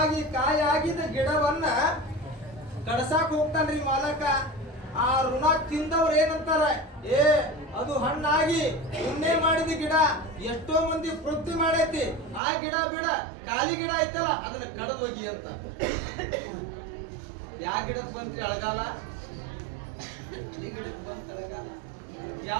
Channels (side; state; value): left; drops out; at 12.4 s